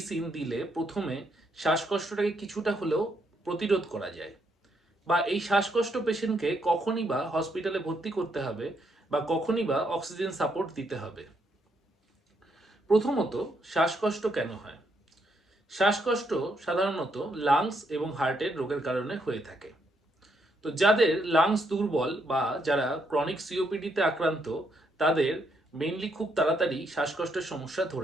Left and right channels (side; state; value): both; normal; correlation 0.75